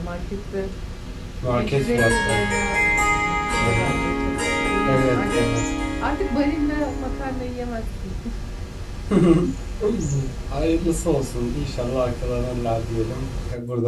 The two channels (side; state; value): both; identical; correlation 1.00